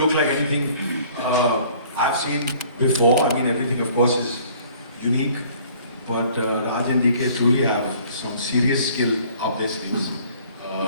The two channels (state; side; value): inverted; both; correlation -0.55